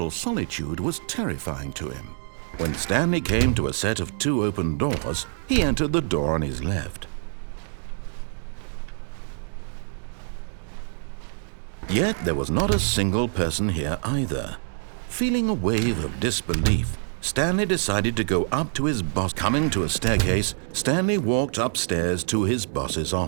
solitude was terrifying to him. When Stanley came to a set of 2 open doors, he entered the door on his left. Yet there was not a single person here either. Feeling a wave of disbelief, Stanley decided to go up to his boss. Coming to a staircase, Stanley walked upstairs to his boss's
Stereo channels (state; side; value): silent; left; digital silence